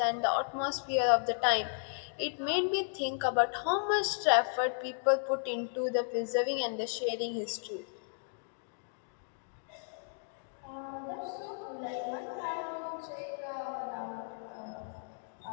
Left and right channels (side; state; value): right; silent; digital silence